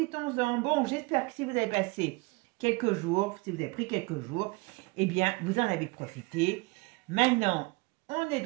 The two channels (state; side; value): quieter; left; 25.8 dB